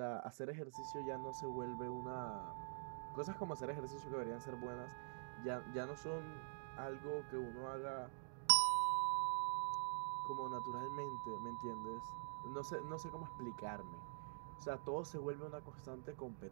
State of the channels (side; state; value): left; silent; digital silence